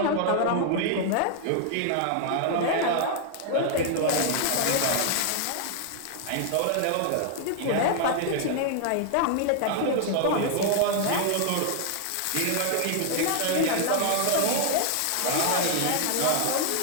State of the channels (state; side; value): different; both; correlation 0.00